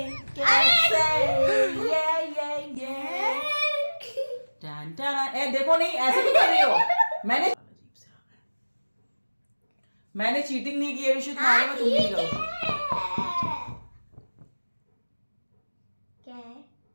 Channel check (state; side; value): inverted; both; correlation -1.00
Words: ये ए देखो, नहीं ऐसे क्यों कर रही हो? मैंने चीटिंग नहीं की है विशु, तुम्हारे में तुम नहीं करो। क्या है?